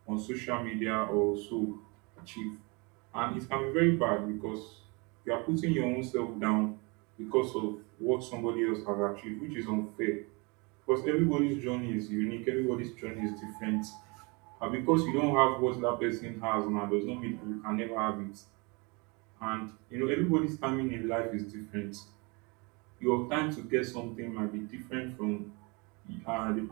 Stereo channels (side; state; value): left; quieter; 29.2 dB